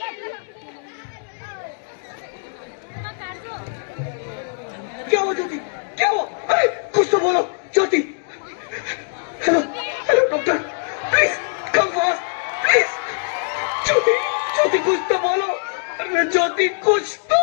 क्या हुआ ज्योति, क्या हुआ? कुछ तो बोलो Jyoti. Hello hello doctor, please come fast please. Jyoti Jyoti कुछ तो बोलो। अरे ज्योति कुछ तो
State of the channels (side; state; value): right; silent; digital silence